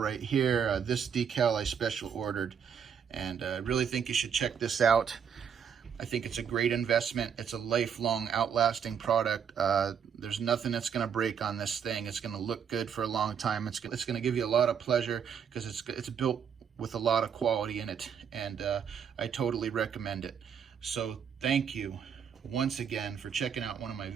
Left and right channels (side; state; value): left; quieter; 7.5 dB